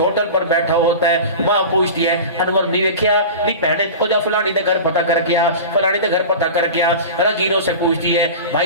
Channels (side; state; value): both; inverted; correlation -0.32